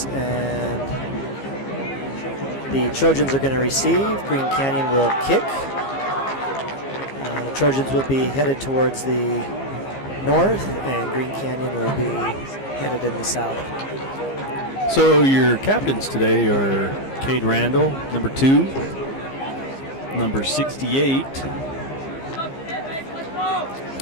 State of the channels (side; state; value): right; late; 15 ms